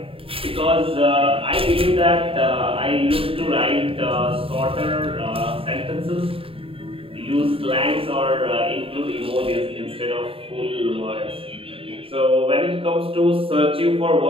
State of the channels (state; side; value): late; left; 0.27 ms